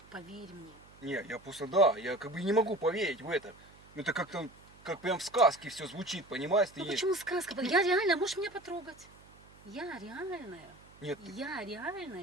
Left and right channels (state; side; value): noise; right; hum, 24 dB below the sound